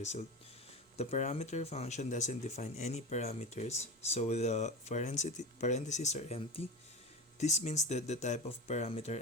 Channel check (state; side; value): normal; both; correlation 0.26